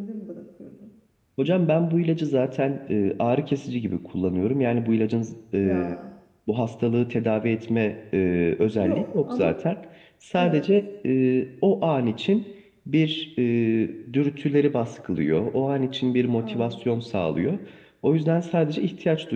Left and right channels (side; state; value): both; identical; correlation 1.00